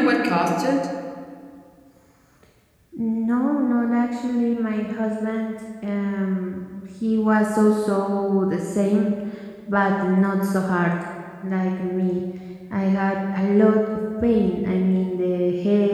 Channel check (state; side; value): identical; both; correlation 1.00